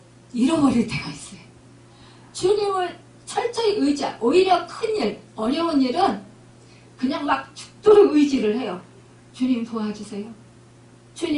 잃어버릴 때가 있어요. 주님을 철저히 오히려 큰일, 어려운 일은 그냥 막 죽도록 의지를 해요. 주님 도와주세요.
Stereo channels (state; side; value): identical; both; correlation 1.00